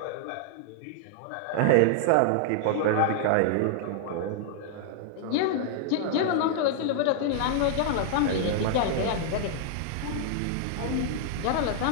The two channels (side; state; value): both; different; correlation -0.01